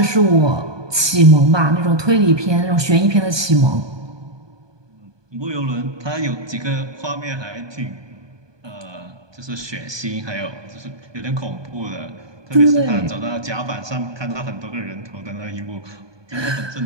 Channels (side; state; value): left; late; 1.2 ms